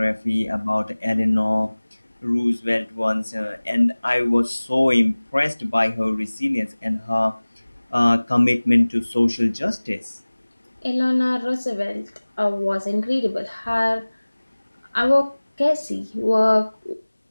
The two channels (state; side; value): inverted; both; correlation -1.00